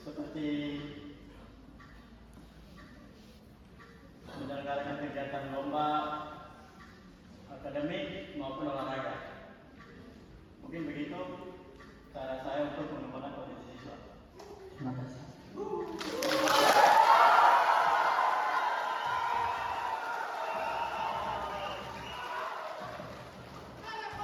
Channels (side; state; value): both; identical; correlation 1.00